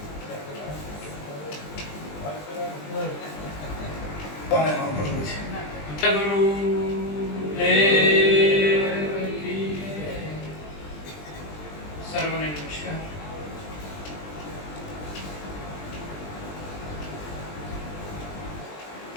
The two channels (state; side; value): late; right; 20 ms